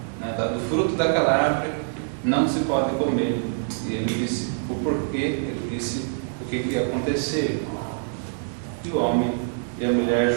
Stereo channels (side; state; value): left; silent; digital silence